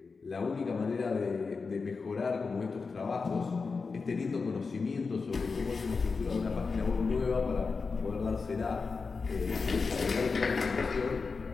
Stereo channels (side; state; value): right; quieter; 4.6 dB